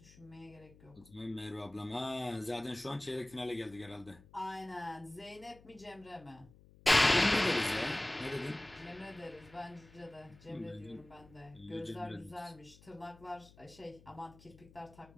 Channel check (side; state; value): left; noise; hum, 23 dB below the sound